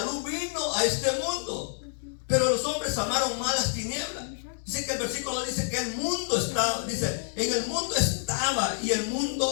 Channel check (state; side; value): silent; right; digital silence